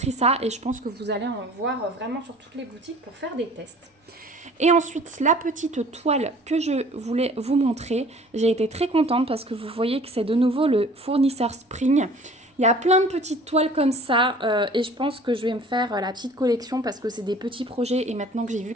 ça et je pense que vous allez en voir vraiment sur toutes les boutiques pour faire des tests. Et ensuite, la petite toile que je voulais vous montrer, j'ai été très contente parce que vous voyez que c'est de nouveau le fournisseur Spring. Il y a plein de petites toiles comme ça et je pense que je vais me faire la petite collection parce que c'est des petits projets et maintenant que j'ai vu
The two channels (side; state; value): both; normal; correlation 0.49